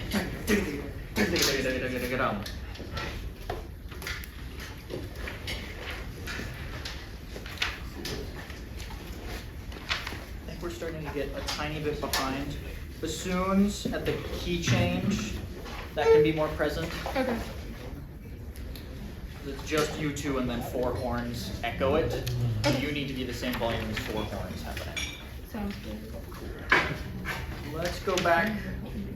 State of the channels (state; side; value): identical; both; correlation 1.00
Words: I think we're starting to get a tiny bit behind. Bassoons at the key change, that can be more present. Okay. It's just you two and then four horns echo it. Okay. You need to be the same volume as four horns happening. Sounds good. Let's go back